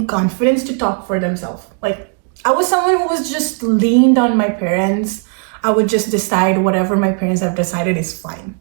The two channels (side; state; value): left; quieter; 38.0 dB